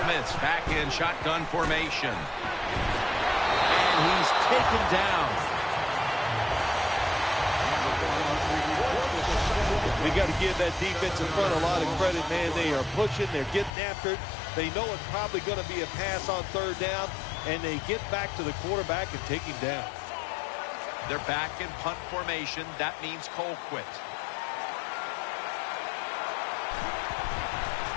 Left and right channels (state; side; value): drops out; right; at 13.7 s